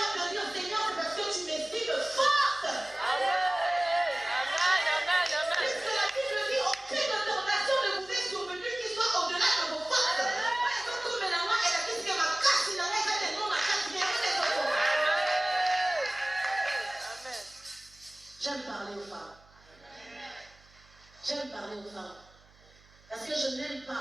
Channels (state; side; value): noise; right; hum, 28 dB below the sound